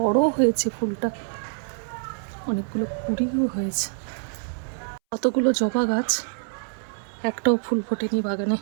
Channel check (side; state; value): left; silent; 61 dB below the other